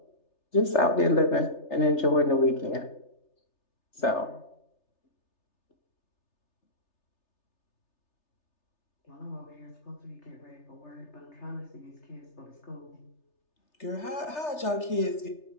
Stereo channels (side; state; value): right; late; 3.3 ms